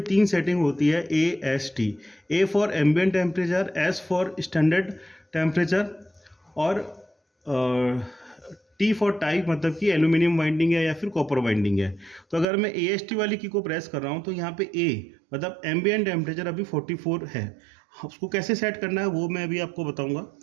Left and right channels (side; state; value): left; drops out; at 12.5 s